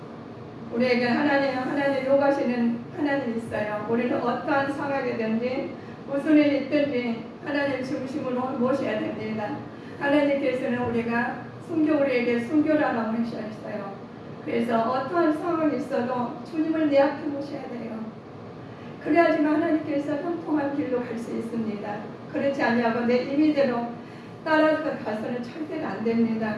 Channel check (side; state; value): both; identical; correlation 1.00